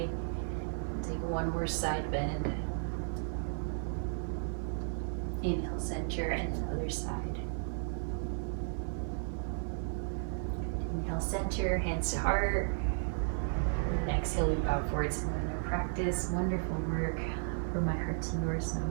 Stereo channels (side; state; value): left; silent; 55 dB below the other